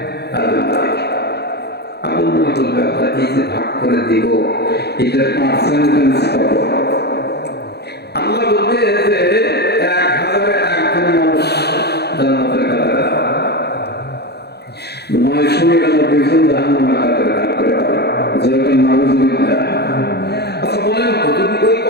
আদম নবীকে। আদম নবী বলবে, আল্লাহ এই যে ভাগ করে দিব, এটার পার্সেন্টেজ কত? আল্লাহ বলবে যে 1000-এ 1 মানুষ জান্নাতের কাতারে দাও, 999 জন জাহান্নামের কাতারে দাও করে দাও। যেরকম নাউযুবিল্লাহ। আচ্ছা বলেন তো, যদি ওই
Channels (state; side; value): late; right; 0.48 ms